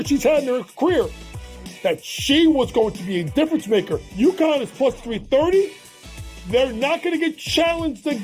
she's had in her career, that she was going to be a difference maker. UConn is plus 330. They're not going to get challenged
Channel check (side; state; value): both; identical; correlation 1.00